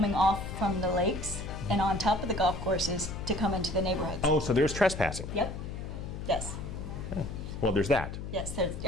off from the lakes and on top of the golf courses to come into the neighborhoods. Oh, so there's trespassing? Yep. Yes. Well, there's that. Yes,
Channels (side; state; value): left; noise; hum, 8 dB below the sound